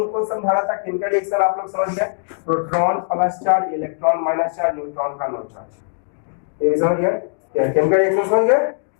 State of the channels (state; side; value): silent; right; digital silence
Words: समझाना था, केमिकल रिएक्शन आप लोग समझ गए, proton plus charge, electron minus charge, neutron का नो चार्ज, ये समझ गए। केमिकल रिएक्शन समझ गए।